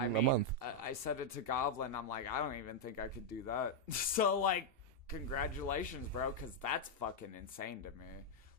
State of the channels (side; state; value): left; late; 2.8 ms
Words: in a month. I said it to Goblin. I'm like, I don't even think I could do that. So congratulations, bro, because that's fucking insane to me.